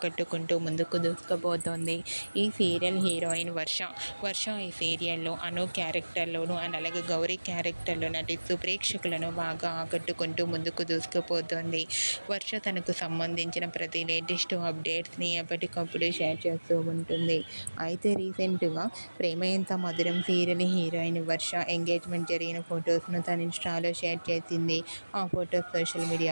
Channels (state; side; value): inverted; both; correlation -1.00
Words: ముందుకు దూసుకుపోతోంది. ఈ సీరియల్ హీరోయిన్ వర్ష ఈ సీరియల్లో అను క్యారెక్టర్లోను అండ్ అలాగే గౌరీ క్యారెక్టర్లో నటిస్తూ ప్రేక్షకులను బాగా ఆకట్టుకుంటూ ముందుకు దూసుకుపోతోంది. వర్ష తనకు సంబంధించిన ప్రతి లేటెస్ట్ అప్డేట్స్ని ఎప్పటికప్పుడు షేర్ చేస్తూ ఉంటుంది. అయితే రీసెంట్గా ప్రేమ ఎంత మధురం సీరియల్ హీరోయిన్ వర్ష ఎంగేజ్మెంట్ జరిగిన ఫొటోస్ను తన ఇన్స్టాలో షేర్ చేసింది. ఆ ఫొటోస్ సోషల్